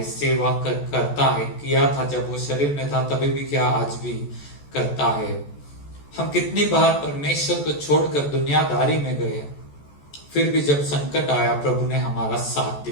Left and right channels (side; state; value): right; late; 14 ms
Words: सेवा करता है। किया था जब वो शरीर में था, तभी भी क्या, आज भी करता है। हम कितनी बार परमेश्वर को छोड़कर दुनियादारी में गए, फिर भी जब संकट आया प्रभु ने हमारा साथ